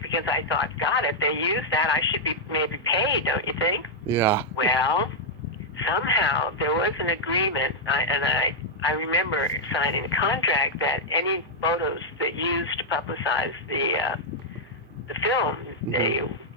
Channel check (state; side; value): normal; both; correlation -0.04